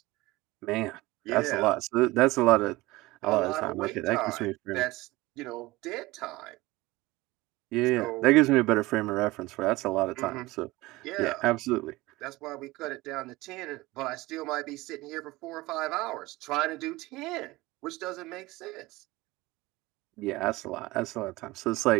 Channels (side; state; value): left; quieter; 20.2 dB